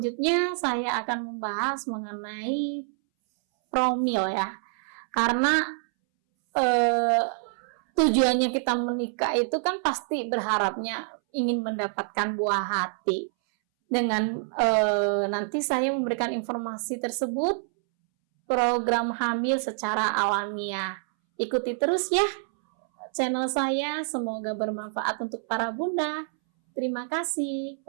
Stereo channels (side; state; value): left; silent; 60 dB below the other